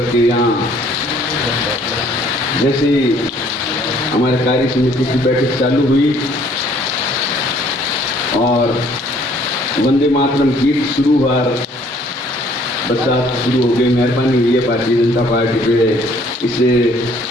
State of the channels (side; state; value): both; normal; correlation 0.59